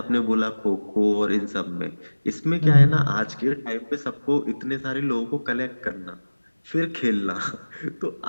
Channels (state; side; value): inverted; both; correlation -1.00